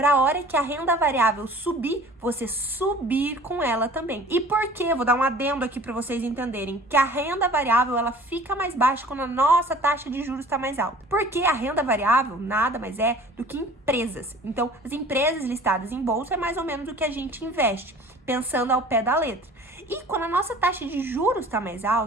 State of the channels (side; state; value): both; normal; correlation 0.47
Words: a hora que a renda variável subir, você subir com ela também. E por quê? Vou dar um adendo aqui para vocês entenderem que a renda variável ela fica mais baixa quando a nossa taxa de juros está mais alta. Porque a renda variável nada mais é do que empresas. Então, as empresas listadas em bolsa é mais ou menos o que a gente investe, pensando ao pé da letra. E quando a nossa taxa de juros está mais